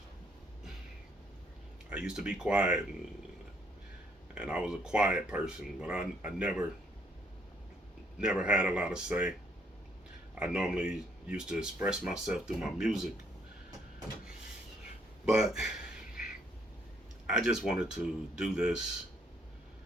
I used to be quiet and I was a quiet person, but I never had a lot to say. I normally used to express myself through my music, but I just wanted to do this.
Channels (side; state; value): both; normal; correlation 0.69